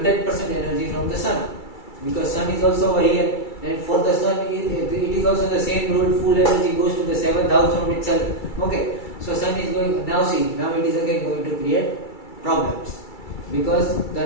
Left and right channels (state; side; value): late; right; 2.3 ms